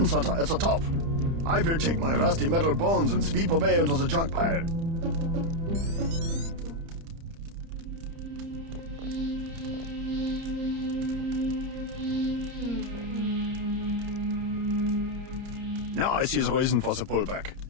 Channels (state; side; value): late; left; 30 ms